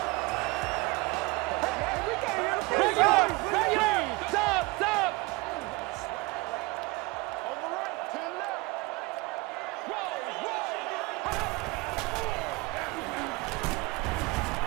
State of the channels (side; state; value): left; quieter; 24.7 dB